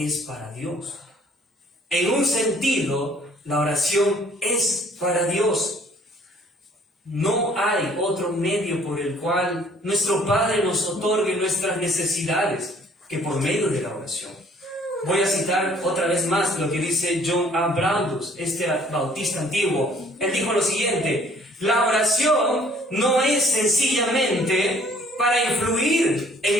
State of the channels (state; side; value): normal; both; correlation 0.58